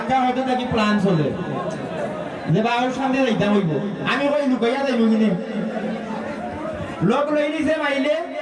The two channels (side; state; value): both; identical; correlation 1.00